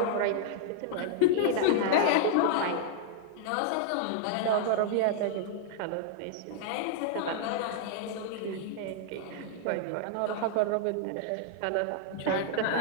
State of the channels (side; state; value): both; different; correlation -0.01